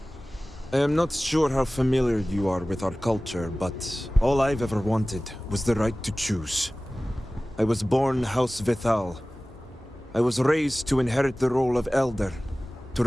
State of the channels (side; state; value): both; normal; correlation 0.98